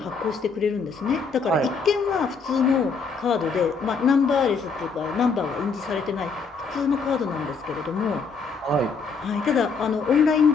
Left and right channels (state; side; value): quieter; right; 4.9 dB